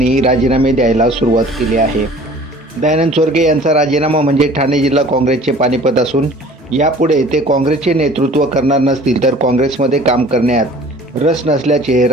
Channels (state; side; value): normal; both; correlation 0.48